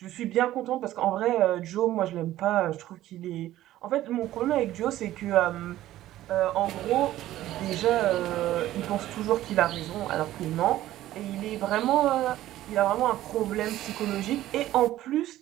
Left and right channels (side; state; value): left; quieter; 14.3 dB